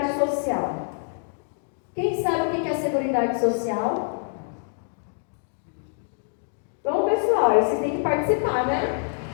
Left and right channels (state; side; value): silent; right; 61 dB below the other